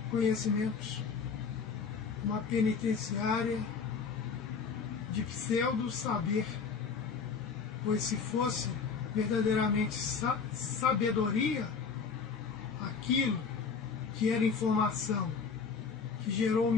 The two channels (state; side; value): quieter; right; 5.6 dB